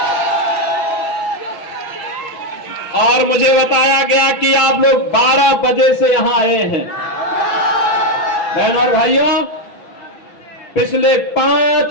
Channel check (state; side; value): late; right; 6.0 ms